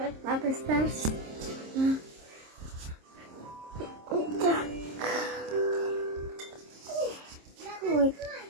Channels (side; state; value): left; late; 26 ms